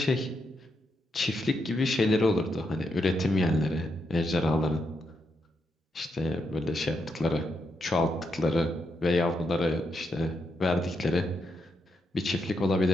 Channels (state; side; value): normal; both; correlation 0.82